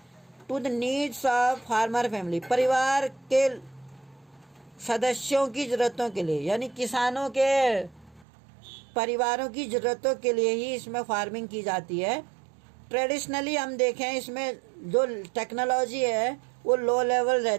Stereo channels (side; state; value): left; drops out; at 8.2 s